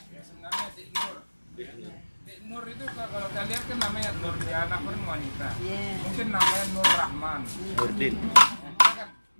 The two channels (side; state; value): both; inverted; correlation -1.00